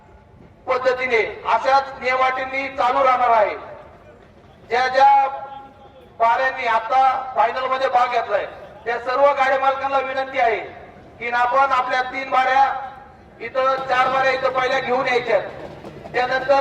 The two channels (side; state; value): both; identical; correlation 1.00